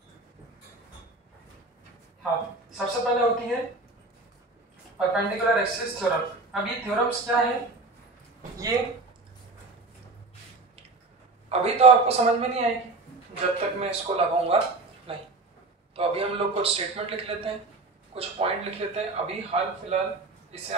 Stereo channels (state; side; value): quieter; left; 3.4 dB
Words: हाँ, सबसे पहले होती है परपेंडिकुलर एक्सिस थ्योरम। अब ये थ्योरम्स क्या है, ये अभी तो आपको समझ में नहीं आएगी जब तक मैं इसको लगाऊंगा नहीं। तो अभी हम लोग कुछ स्टेटमेंट लिख लेते हैं, कुछ पॉइंट लिख लेते हैं। अभी हाल फिलहाल इसे